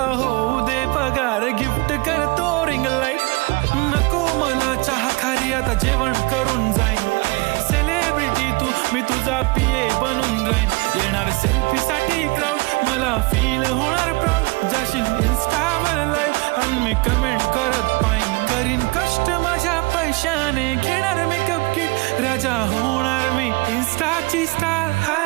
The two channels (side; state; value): left; quieter; 26.3 dB